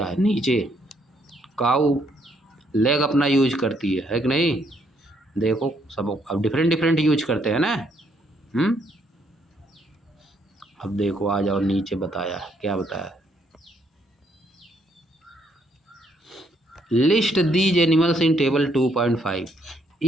है नीचे, काऊ लेग अपना यूज करती है कि नहीं। देखो सब अब डिफरेंट डिफरेंट यूज करते हैं ना। अब देखो आ जाओ नीचे, बताया क्या बताया, list these animals in table 2.5।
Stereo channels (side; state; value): both; normal; correlation 0.71